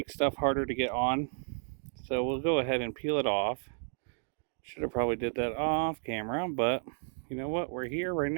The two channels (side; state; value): left; silent; 56 dB below the other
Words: stuff harder to get on. So we'll go ahead and peel it off. Should have probably did that off camera, but you know what? We're here right